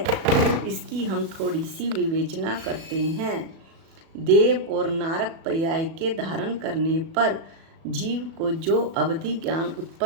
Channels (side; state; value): left; late; 37 ms